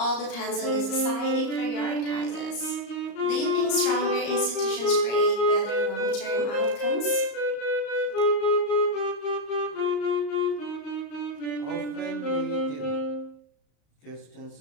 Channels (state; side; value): late; right; 34 ms